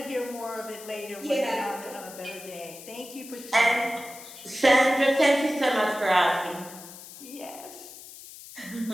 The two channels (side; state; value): left; noise; hiss, 16 dB below the sound